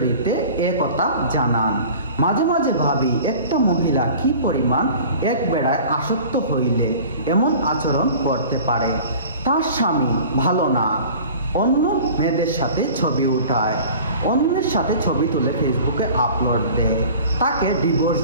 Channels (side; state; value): both; inverted; correlation -0.43